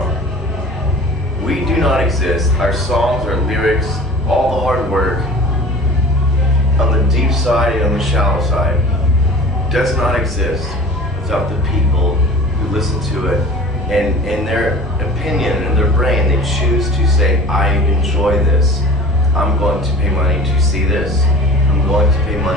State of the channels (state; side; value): normal; both; correlation 0.42